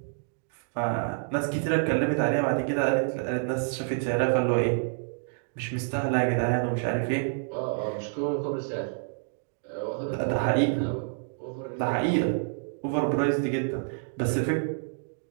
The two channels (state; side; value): silent; left; digital silence